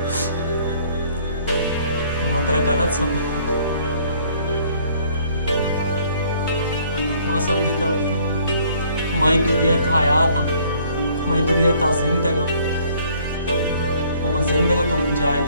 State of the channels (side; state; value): both; inverted; correlation -0.60